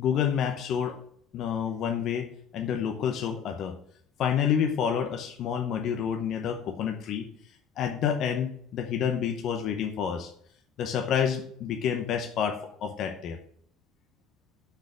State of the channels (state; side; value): quieter; right; 7.8 dB